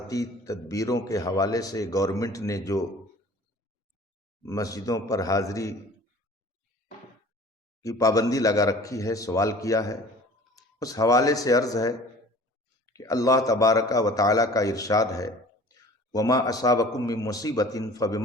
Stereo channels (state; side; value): normal; both; correlation 0.46